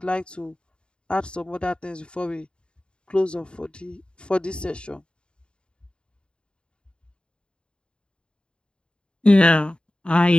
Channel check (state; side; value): late; right; 0.052 ms